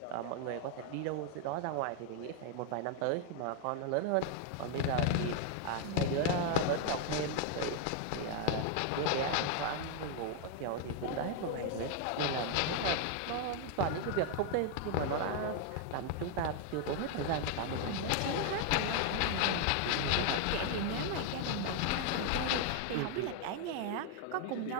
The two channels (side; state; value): both; different; correlation 0.00